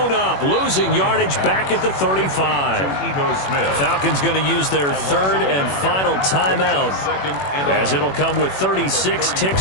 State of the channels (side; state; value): right; late; 21 ms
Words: up, losing yardage back at the 35. Falcons going to use their 3rd and final timeout, as it'll come with 36